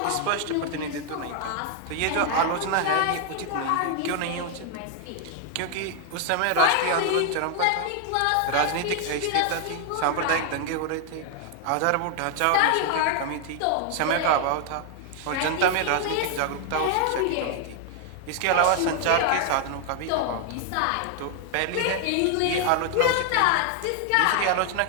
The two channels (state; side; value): different; both; correlation 0.00